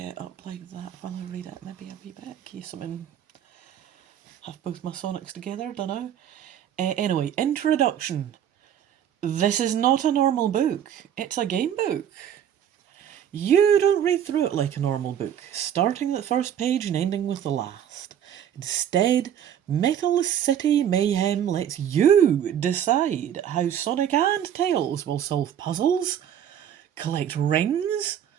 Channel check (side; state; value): left; quieter; 9.7 dB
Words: up like that while I read it. Maybe a wee bit, in case I'm have both my Sonics together, dunno. Anyway, introduction. This is not a normal book. It's a game book. You don't read through it like a normal book, starting at the first page and ending with the last. Instead, Metal City Mayhem lets you decide how Sonic and Tails will solve puzzles, collect rings.